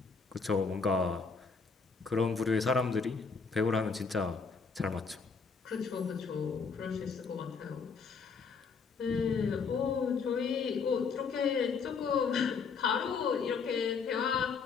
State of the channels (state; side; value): quieter; right; 5.2 dB